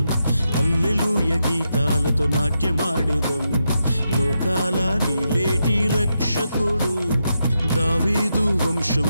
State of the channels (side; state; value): both; inverted; correlation -0.85